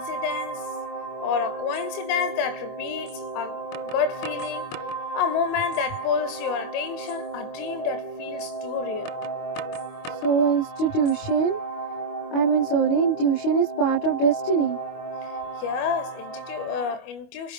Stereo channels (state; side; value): late; right; 25 ms